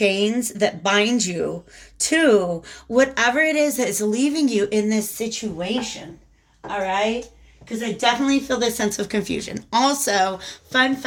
that bind you to whatever it is that is leaving you in this situation, all right? Because I definitely feel this sense of confusion. Also, fun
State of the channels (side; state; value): both; identical; correlation 1.00